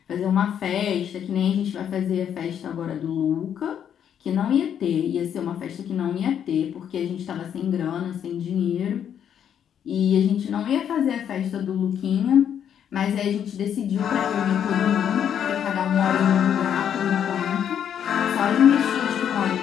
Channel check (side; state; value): right; quieter; 9.0 dB